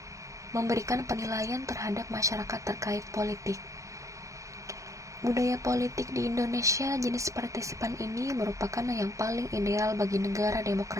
memberikan penilaian terhadap masyarakat terkait politik. Budaya politik di Indonesia jenis partisipan ini merupakan yang paling ideal bagi negara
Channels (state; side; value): late; left; 0.15 ms